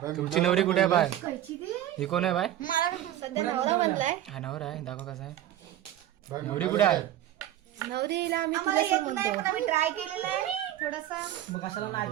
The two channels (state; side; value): quieter; left; 12.6 dB